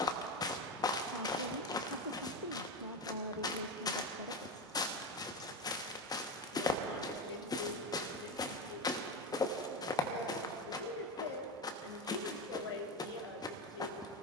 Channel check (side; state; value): both; normal; correlation 0.17